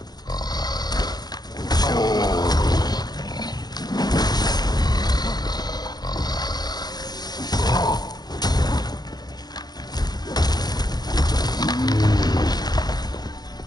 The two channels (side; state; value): right; late; 0.19 ms